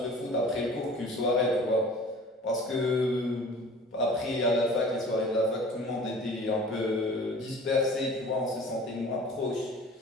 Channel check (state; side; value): normal; both; correlation 0.44